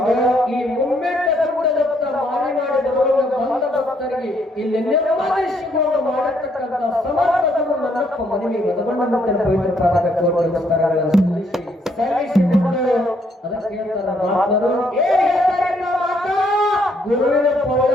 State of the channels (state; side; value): normal; both; correlation 0.70